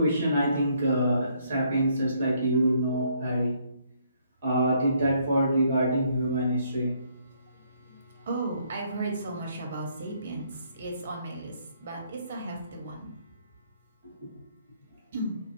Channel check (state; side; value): inverted; both; correlation -0.68